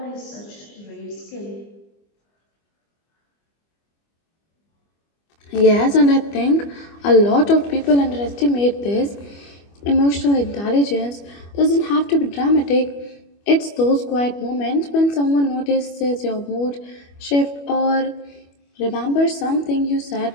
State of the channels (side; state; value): right; late; 25 ms